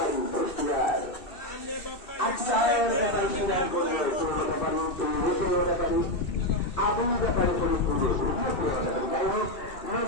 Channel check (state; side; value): late; right; 2.6 ms